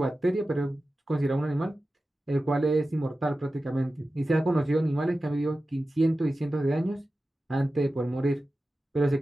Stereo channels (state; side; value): normal; both; correlation 0.94